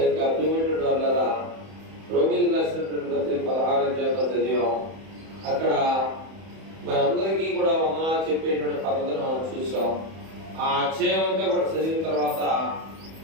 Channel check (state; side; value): late; left; 31 ms